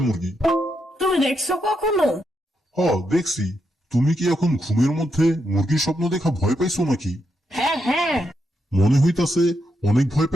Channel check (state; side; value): normal; both; correlation 0.82